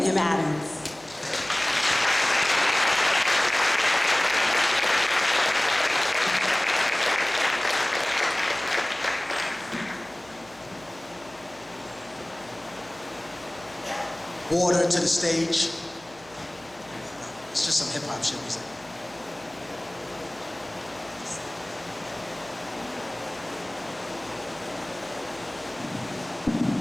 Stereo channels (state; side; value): noise; left; hum, 25 dB below the sound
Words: M. Adams. Water to the stage. It's just some hip hop shit we say.